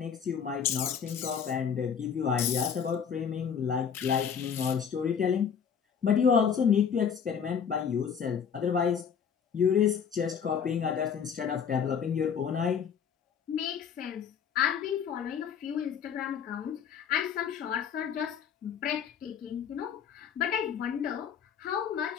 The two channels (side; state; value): right; quieter; 7.4 dB